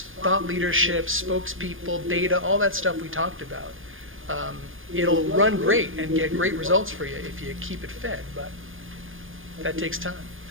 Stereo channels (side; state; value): left; late; 0.59 ms